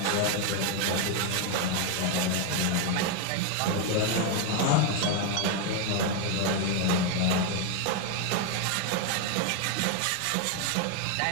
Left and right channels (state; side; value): different; both; correlation 0.01